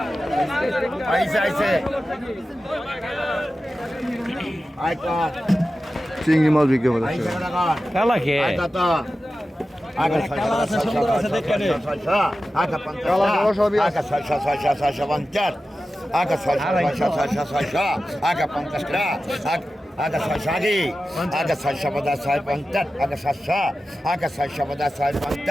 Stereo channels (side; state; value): both; normal; correlation 0.94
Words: চিংড়ি মাছ বিক্রি হবে দর্শক। Aga Sashagi, Aga Sashabada Sai Pantat, Aga Sasha, Aga Sashabada Sai